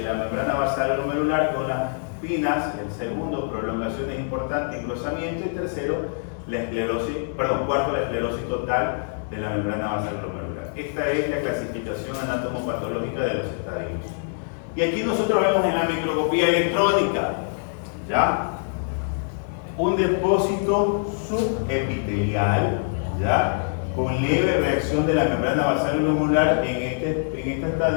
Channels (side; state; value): right; silent; digital silence